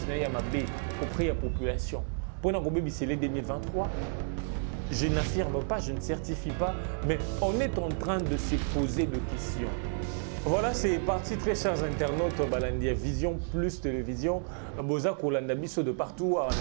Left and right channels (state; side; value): silent; left; 57 dB below the other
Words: auprès de la population? Pour nous, c'est 2023. Je n'affirme pas, je ne certifie pas, mais on est en train de se poser des questions. Voilà, c'est parti, très chers internautes, Balandia Vision plus télévision. Boza Kolanda Bisso de partout, à